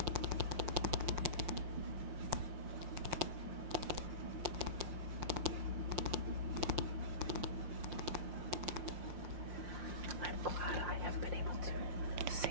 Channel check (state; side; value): late; left; 5.6 ms